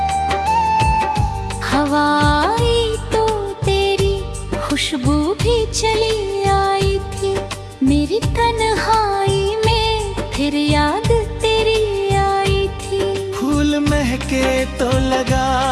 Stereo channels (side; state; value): both; identical; correlation 1.00